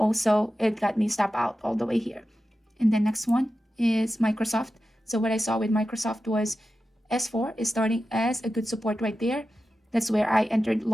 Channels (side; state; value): both; normal; correlation 0.92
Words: it got me stop out all the way here. And the next one is Microsoft. So what I saw with Microsoft was S4 is starting as a good support right there. That's where I entered